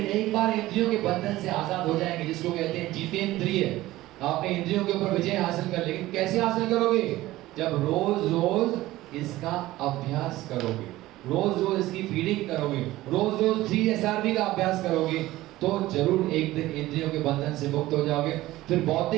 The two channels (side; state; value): left; quieter; 16.8 dB